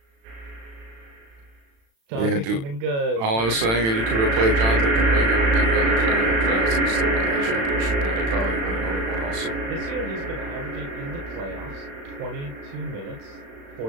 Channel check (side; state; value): left; late; 36 ms